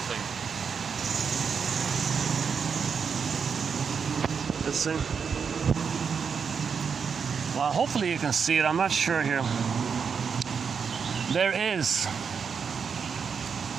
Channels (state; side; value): quieter; left; 6.3 dB